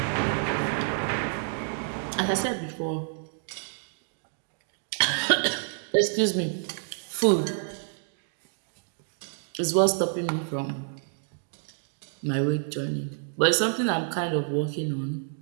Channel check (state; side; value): silent; left; digital silence